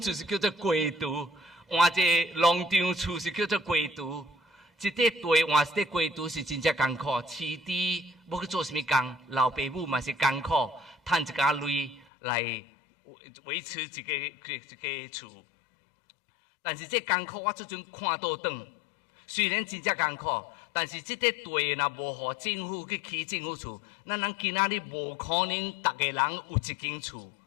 是叫做龟厨，换一个农场厝是叫做龟厨。一块地换一块龟厨是真正艰苦，饲猪要去做什么工？老爸母嘛是艰苦，赚一家钱来维持一个厝。但是这艰苦我即阵看倒转，虽然真正艰苦，但是这块地若无互政府去起政府厝，咱人今仔日无可能逐个人有一间厝。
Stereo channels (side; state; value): right; drops out; at 12.1 s